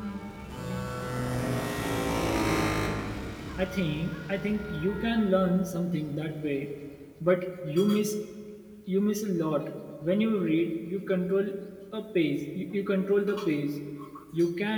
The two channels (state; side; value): identical; both; correlation 1.00